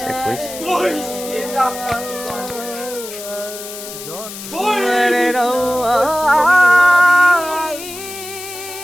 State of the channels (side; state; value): left; noise; hiss, 11 dB below the sound